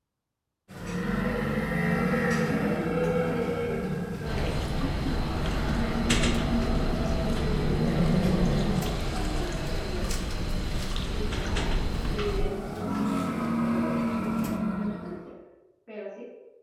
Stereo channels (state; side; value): identical; both; correlation 1.00